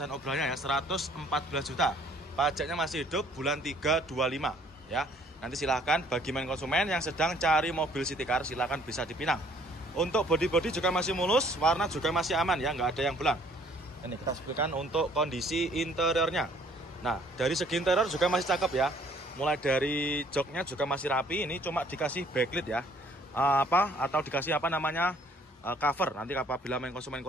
obrolannya ya, 114 juta. Pajaknya masih hidup, bulan 3 25 ya. Nanti silahkan bagi main konsumen yang sedang cari mobil city car, silahkan bisa dipinang. Untuk bodi-bodi juga masih mulus, warna juga masih aman ya, nggak ada yang belang. Ini kita sebutkan untuk kondisi interiornya. Nah, dari segi interior juga masih cakep ya. Mulai dari joknya juga masih rapi. Ini cuma dikasih backlit ya, atau dikasih cover. Nanti apabila main konsumen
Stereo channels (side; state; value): both; normal; correlation 0.60